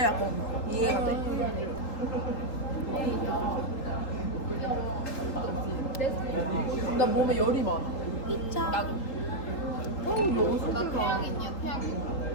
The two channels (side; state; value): right; late; 3.8 ms